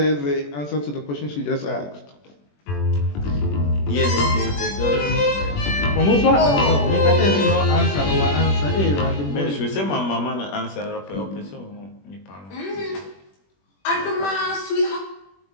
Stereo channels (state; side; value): late; right; 21 ms